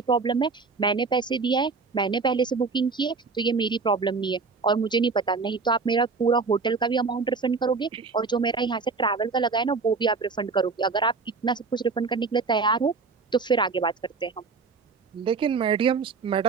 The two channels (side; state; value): left; quieter; 4.5 dB